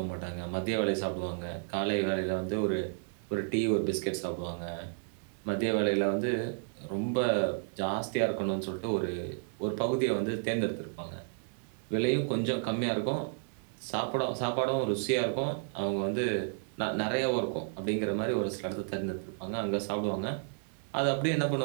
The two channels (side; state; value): left; silent; digital silence